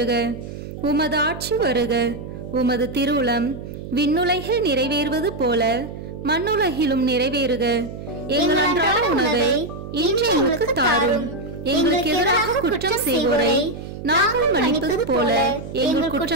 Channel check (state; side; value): noise; right; hum, 10 dB below the sound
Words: உமது ஆட்சி வருக. உமது திருவுளம் விண்ணுலகில் நிறைவேறுவது போல மண்ணுலகிலும் நிறைவேறுக. எங்கள் அன்றாட உணவை இன்று எங்களுக்கு தாரும். எங்களுக்கு எதிராக குற்றம் செய்வோரை நாங்கள் மன்னிப்பது போல எங்கள்